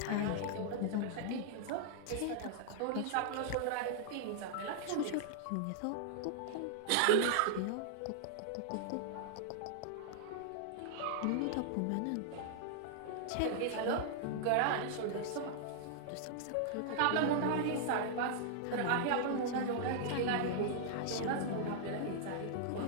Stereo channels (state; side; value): different; both; correlation -0.01